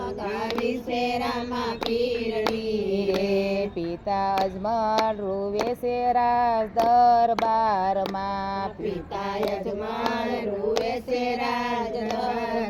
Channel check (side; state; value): both; identical; correlation 1.00